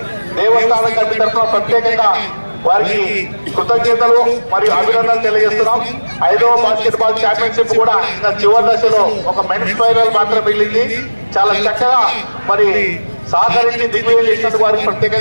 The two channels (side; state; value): both; inverted; correlation -1.00